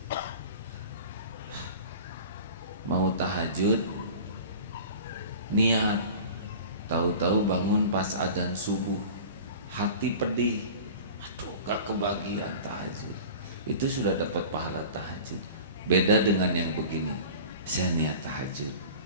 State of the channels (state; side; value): inverted; both; correlation -0.39